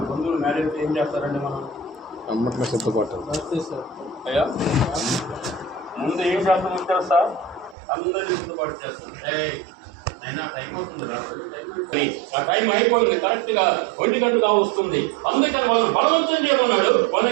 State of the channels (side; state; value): left; drops out; at 7.8 s